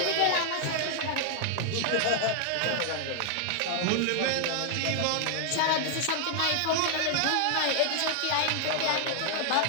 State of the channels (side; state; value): both; different; correlation 0.00